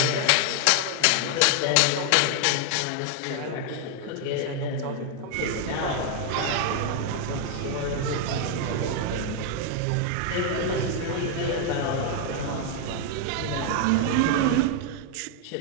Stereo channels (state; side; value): different; both; correlation 0.00